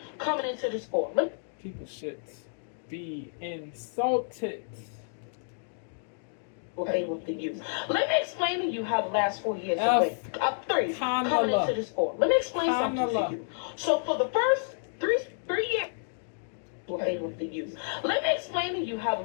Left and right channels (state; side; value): silent; right; digital silence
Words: coming into this four. People should be insulted. Favor for you. Let me explain to you how the last 4 years have went. Up three, coming into this four. Let me explain something to you. So for the first three years, favor for you. Let me explain to you how the